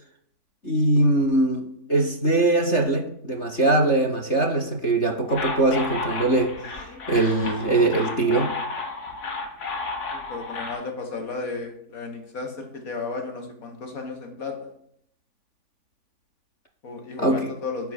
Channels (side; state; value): right; late; 3.3 ms